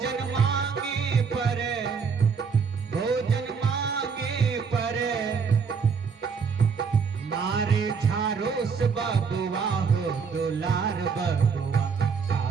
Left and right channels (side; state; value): left; quieter; 5.7 dB